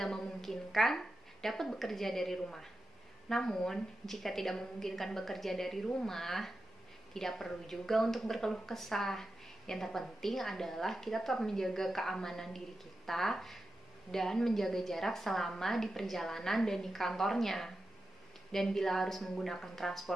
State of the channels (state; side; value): normal; both; correlation 0.91